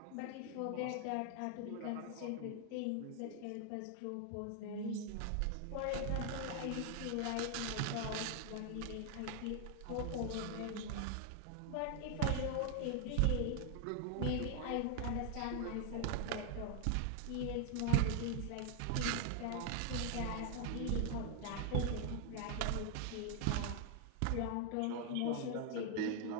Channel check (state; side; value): different; both; correlation 0.00